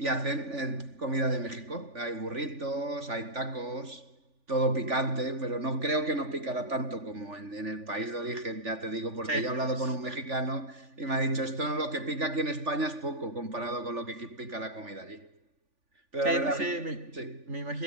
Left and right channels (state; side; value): late; left; 3.5 ms